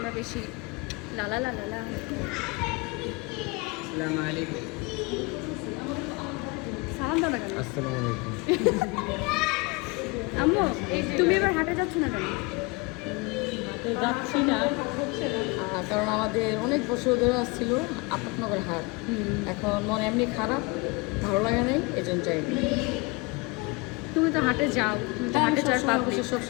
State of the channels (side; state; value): right; quieter; 26.5 dB